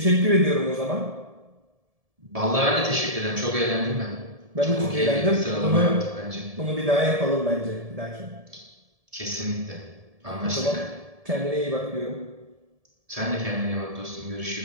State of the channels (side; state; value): left; late; 1.7 ms